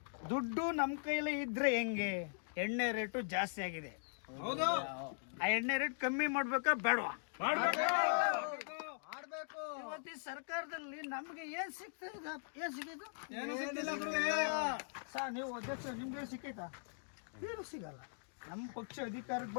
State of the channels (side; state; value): right; silent; digital silence